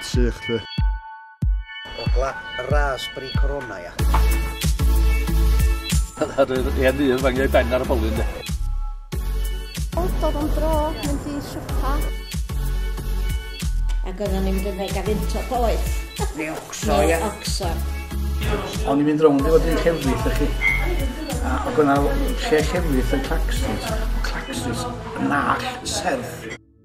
sych lle. Dogla raspberry corona ia. Ar yr hen un fangiau ben ar y bolyn de. Dod am dro, mynd i siwpa. Ac oedden ni'n mynd yn ei gafynto boeth. Neu ocso ia. Oxon. O'n i'n mynd rownd i fod yn llefrith ych chi. Ac o'na lle llefrith yn Claxons. Claxons yn nall serth.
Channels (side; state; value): both; identical; correlation 1.00